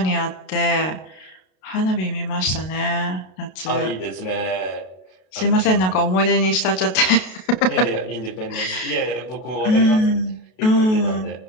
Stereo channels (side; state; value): right; late; 32 ms